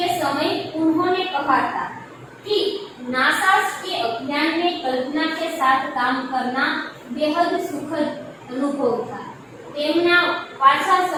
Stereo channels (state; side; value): identical; both; correlation 1.00